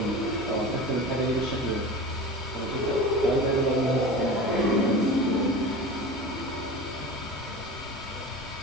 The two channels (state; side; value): normal; both; correlation 0.33